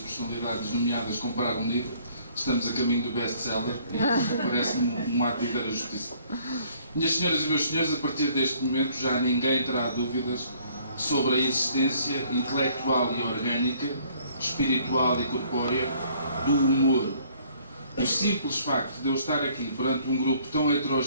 nomeadas comprar um livro, estamos a caminho do best-seller e parece-me um ato de ver a justiça. Minhas senhoras e meus senhores, a partir deste momento já ninguém terá dúvidas sobre a existência intelectual e orgânica, espiritual e corpórea do humor. O simples facto de eu estar aqui perante um grupo tão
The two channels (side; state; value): both; inverted; correlation -0.60